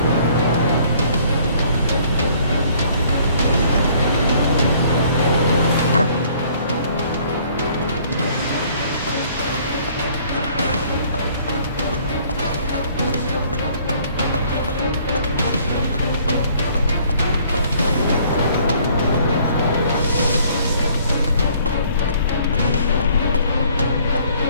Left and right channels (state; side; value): inverted; both; correlation -0.59